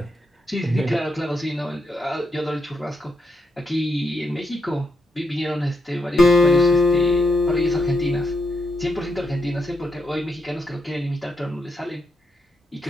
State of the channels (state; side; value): normal; both; correlation 0.81